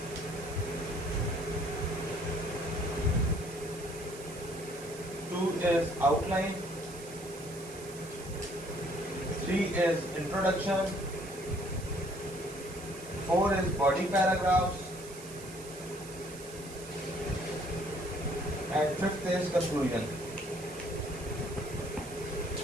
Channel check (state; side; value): noise; right; hiss, 15 dB below the sound